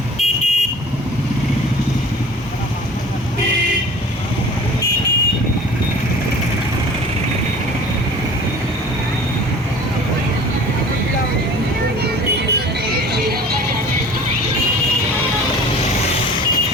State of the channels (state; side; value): normal; both; correlation 0.44